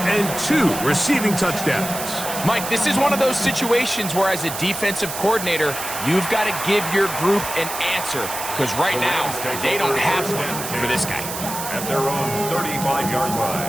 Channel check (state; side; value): noise; right; hiss, 7 dB below the sound